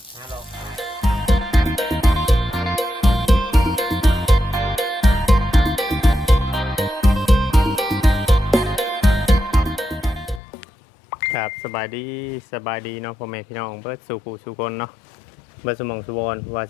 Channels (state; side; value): drops out; right; at 10.4 s